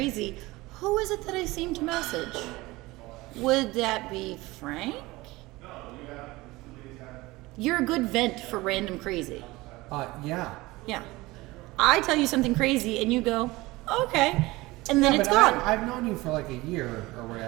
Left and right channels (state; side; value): quieter; left; 20.7 dB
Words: who is it that I seem to message? Would that be Frank? You're a good vent for random crazy. Yeah. Yeah. I tell you something crazy and you go, okay. And then Yeah, it's but gone. I've known you for like a year or